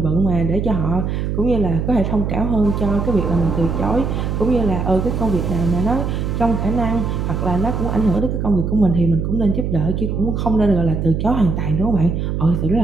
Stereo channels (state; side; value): noise; right; hum, 1 dB below the sound